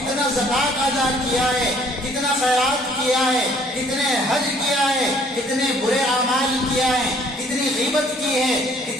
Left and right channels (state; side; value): normal; both; correlation 0.59